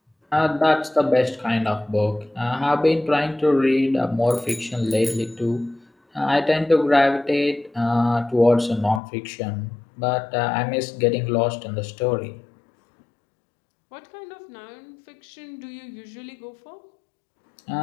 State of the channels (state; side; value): drops out; right; at 9.0 s